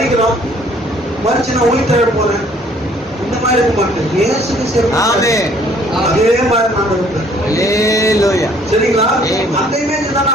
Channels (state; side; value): normal; both; correlation 0.60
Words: மறிச்சு நான் உயிர்த்தெழ போறேன் இந்த மாதிரி இருக்க மாட்டேன். இயேசு கிறிஸ்து அதே மாதிரி நான் இருப்பேன். சரிங்களா? அந்த இமேஜ் தான்